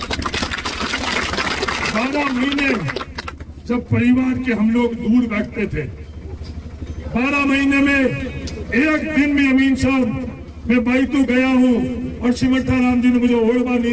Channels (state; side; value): identical; both; correlation 1.00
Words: 12 महीने जब परिवार के हम लोग दूर बैठते थे, 12 महीने में एक दिन भी अमीन साहब मैं बाइतू गया हूं और सिमरता राम जी ने मुझे ओढ़वा नहीं